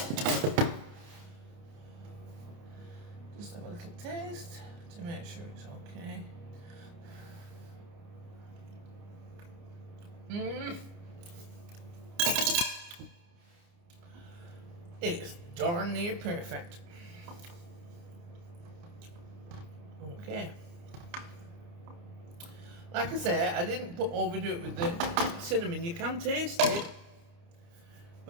Just have a little taste to make sure it's okay. It's darn near perfect. Okay. Like I say, I didn't overdo it with the cinnamon. You can taste it,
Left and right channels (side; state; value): left; late; 29 ms